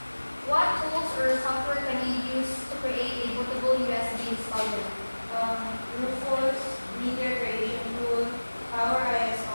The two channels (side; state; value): both; inverted; correlation -1.00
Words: what tools or software can you use to create a bootable USB installer? Rufus, Media Creation Tool, Power